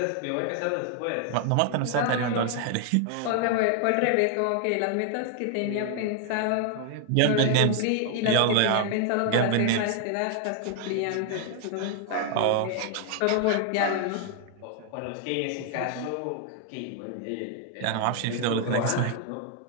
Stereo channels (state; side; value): different; both; correlation 0.00